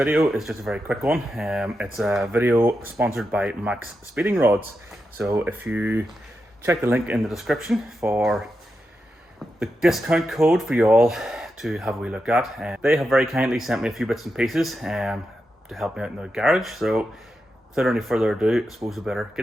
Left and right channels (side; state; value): both; normal; correlation 0.88